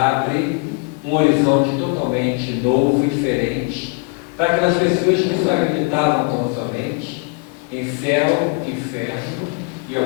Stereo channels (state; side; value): quieter; right; 31.6 dB